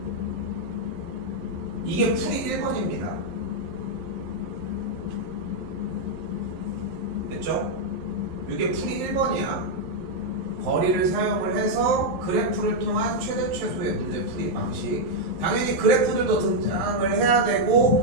이게 풀이 1번입니다. 됐죠? 이게 풀이 1번이야. 거리를 사용을 해서 그래프를 통한 최대 최소의 문제 풀이 방식. 당연히 그래프들도 등장을 해야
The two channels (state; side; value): late; left; 11 ms